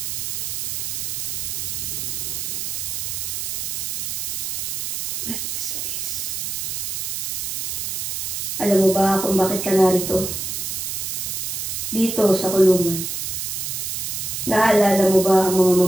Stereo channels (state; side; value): noise; right; hiss, 3 dB below the sound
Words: Alam mo ba kung bakit ka narito? Dito sa kulungan. Naalala mo ba ang mga